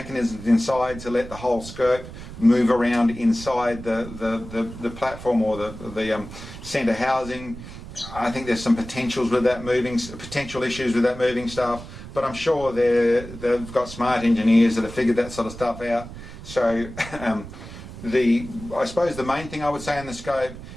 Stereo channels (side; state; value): right; noise; rumble, 13 dB below the sound